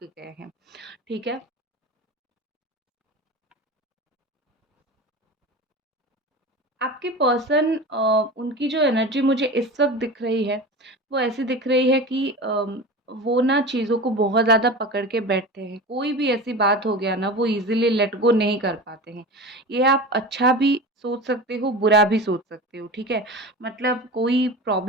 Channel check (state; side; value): normal; both; correlation 0.31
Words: गए हैं, ठीक है? आपके पर्सन उनकी जो एनर्जी मुझे इस वक़्त दिख रही है, वो ऐसी दिख रही है कि वो ना चीज़ों को बहुत ज़्यादा पकड़ के बैठते हैं। कोई भी ऐसी बात हो गया ना, वो ईज़िली लेट गो नहीं कर पाते हैं। ये आप अच्छा भी सोच सकते हो, बुरा भी सोच सकते हो, ठीक है? मतलब कोई